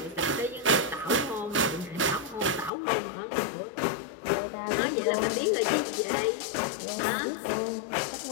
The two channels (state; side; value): drops out; right; at 2.7 s